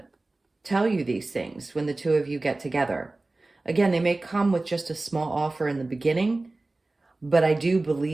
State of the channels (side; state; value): left; quieter; 3.1 dB